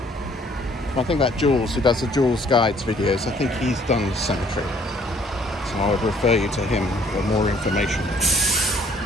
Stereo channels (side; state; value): both; normal; correlation 0.60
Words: I think that Jules, who does the Jules Guides videos, I think he's done the cemetery. So I would refer you to him for more information.